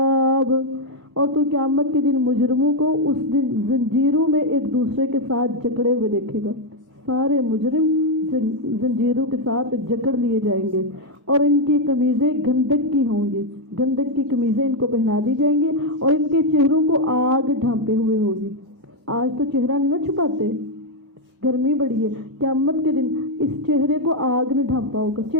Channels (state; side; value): normal; both; correlation 0.01